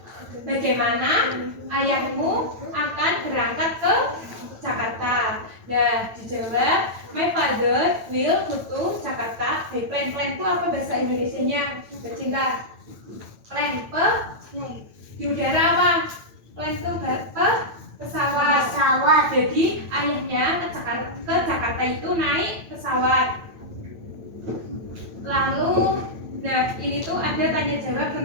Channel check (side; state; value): left; late; 9.0 ms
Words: Bagaimana ayahmu akan berangkat ke Jakarta? Nah, dijawab my father will go to Jakarta by plane. Plane itu apa bahasa Indonesianya? Bercinta. Plane di udara apa? Plane itu pesawat. Jadi ayahnya ke Jakarta itu naik pesawat. Lalu, nah ini tuh ada tanya jawab